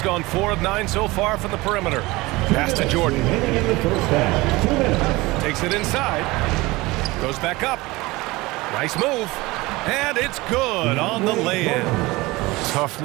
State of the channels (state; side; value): quieter; left; 21.4 dB